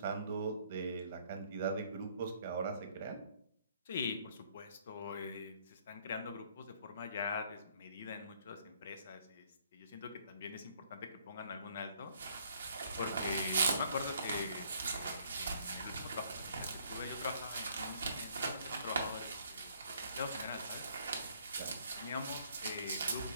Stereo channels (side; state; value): both; inverted; correlation -0.63